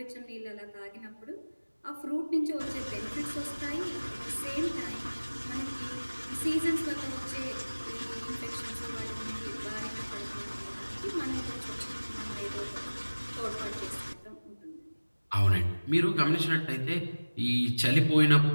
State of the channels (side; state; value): both; inverted; correlation -1.00